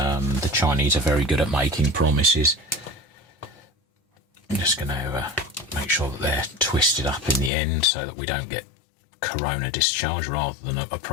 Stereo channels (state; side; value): drops out; right; at 7.5 s